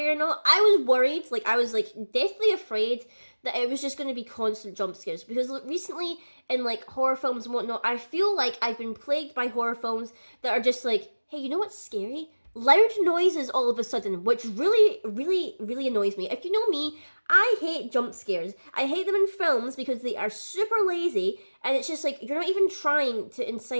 or not. I was worried, I was deathly afraid that it was just going to be constant jump scares, because recently in like horror films and whatnot, I feel like I've been plagued by horror films that are just like, hey, you know what's scary? Loud noises all of a sudden, which really, really, really annoys me. If you know me, I hate jump scares. I hate them in films because they are super lazy, and it's just like, you're not even trying to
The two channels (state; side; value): inverted; both; correlation -1.00